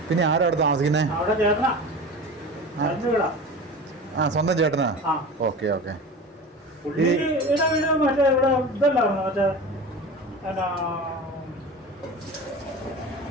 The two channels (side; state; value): both; normal; correlation 0.33